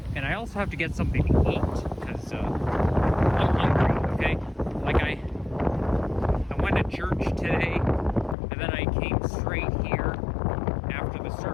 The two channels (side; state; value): right; drops out; at 8.3 s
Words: And I also have to get something to eat, because I'm hungry, okay? Like, I went to church today, and then I came straight here after the